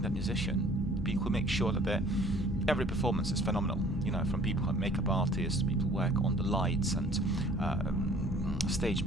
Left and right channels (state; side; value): normal; both; correlation 0.53